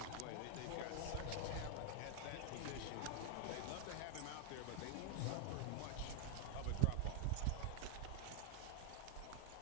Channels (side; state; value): both; different; correlation 0.00